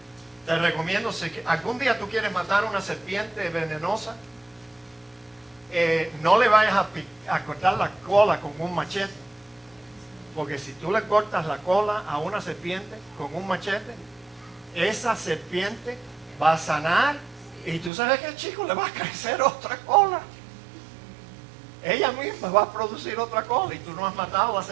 Te recomiendo, si algún día tú quieres matar una serpiente venenosa, no le vayas a cortar la cola con un machete, porque si tú le cortas la cola a una serpiente con un machete, esa serpiente va a sanar y tú sabes que, chico, le va a crecer otra cola. Ella misma va a producir otra cola y tú no has matado a la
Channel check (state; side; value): drops out; left; at 17.9 s